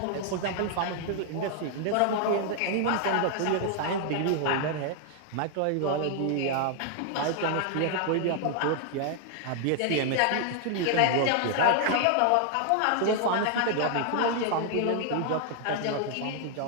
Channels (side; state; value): both; different; correlation 0.00